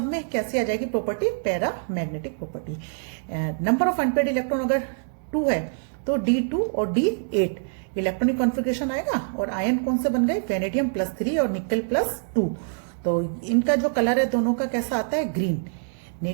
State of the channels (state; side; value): silent; left; digital silence